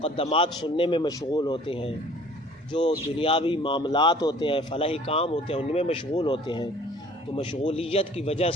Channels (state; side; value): normal; both; correlation 0.52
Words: سننے میں مشغول ہوتے ہیں، جو دنیاوی معاملات ہوتے ہیں، فلاحی کام ہوتے ہیں، ان میں مشغول ہوتے ہیں، تو مشغولیت کی وجہ